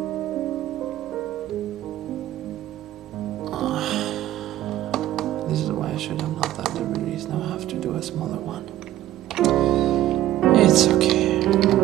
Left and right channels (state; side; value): quieter; left; 13.8 dB